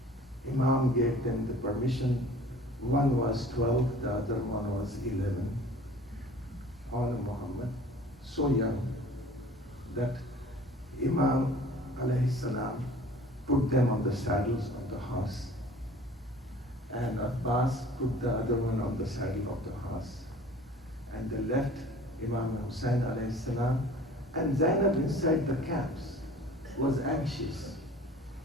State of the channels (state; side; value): normal; both; correlation 0.47